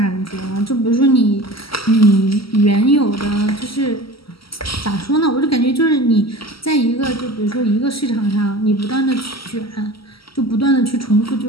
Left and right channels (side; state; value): right; late; 0.75 ms